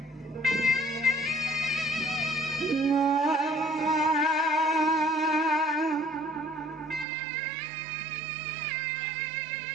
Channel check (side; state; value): left; drops out; at 7.1 s